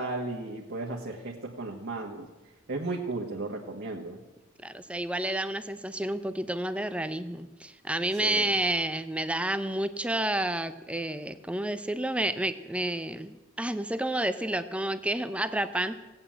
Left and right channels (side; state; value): both; normal; correlation 0.61